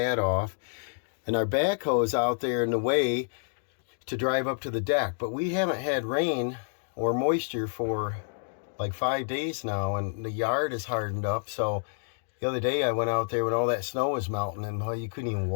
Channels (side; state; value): right; silent; digital silence